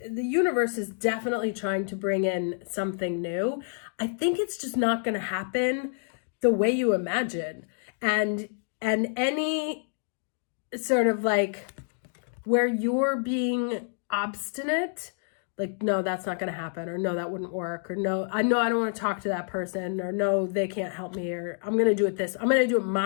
is definitely trying to bring in something new. I think it's just not going to happen the way you imagine. And any sort of like where you're being obstinate, like, no, that's not going to happen, or no, that wouldn't work, or no, I don't want to talk to that person, or no, they can't help me, or I'm going to do it I'm going to do it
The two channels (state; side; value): silent; right; digital silence